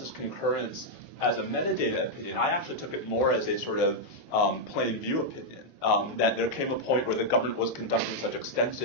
concurrence as a metadata opinion. I actually took it more as a sort of plain view opinion, that there came a point where the government was conducting such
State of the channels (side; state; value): both; normal; correlation -0.03